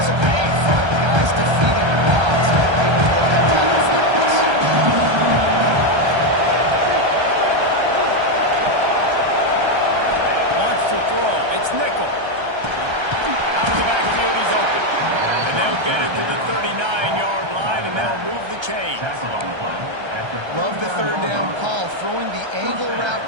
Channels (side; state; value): left; late; 1.3 ms